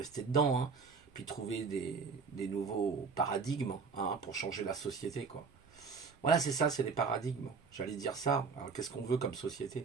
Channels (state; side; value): quieter; left; 5.1 dB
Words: dedans. Puis trouver des nouveaux paradigmes pour changer la société, quoi. Voilà, c'est ça, c'est les paradigmes. J'allais dire ça. Alors, qu'est-ce qu'on veut comme